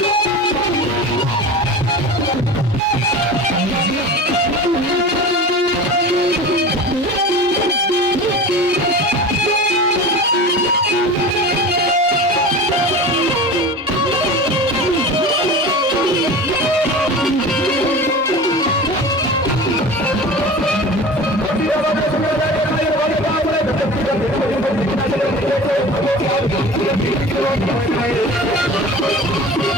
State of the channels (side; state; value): both; normal; correlation 0.34